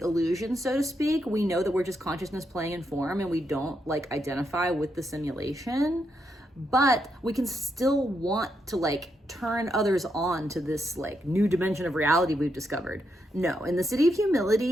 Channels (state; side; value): normal; both; correlation 0.81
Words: so to speak. We know that we're just consciousness playing in form, and we don't identify with the simulation. But we can still want to turn others on to this new dimension of reality we've discovered. No, in the Siddhi of